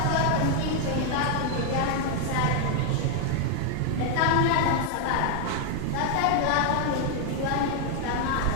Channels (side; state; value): both; different; correlation 0.00